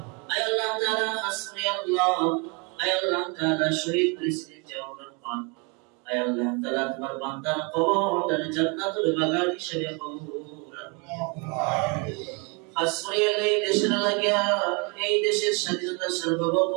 আয় আল্লাহ তাআলা হাসবি আল্লাহ আয় আল্লাহ তাআলা শহীদ প্রেসিডেন্ট জিয়াউর রহমান আয় আল্লাহ তাআলা তোমার বান্দার কবরটা জান্নাতুল বাগান হিসেবে কবুল হাসবি এই দেশের লাগিয়া এই দেশের স্বাধীনতা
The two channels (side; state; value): left; quieter; 32.3 dB